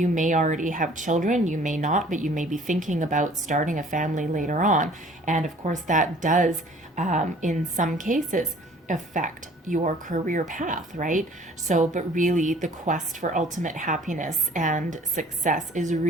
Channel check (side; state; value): both; normal; correlation 0.53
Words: may already have children, you may not, but you may be thinking about starting a family later on. And of course that does, in some cases, affect your career path, right? So, but really the quest for ultimate happiness and success is